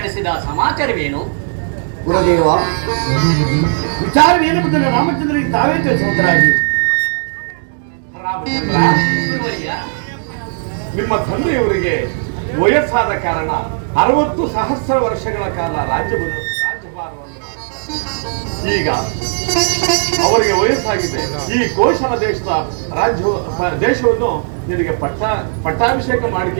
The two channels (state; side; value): silent; left; 68 dB below the other